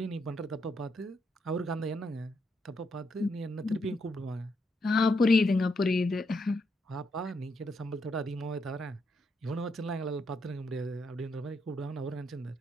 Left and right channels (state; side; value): normal; both; correlation 0.78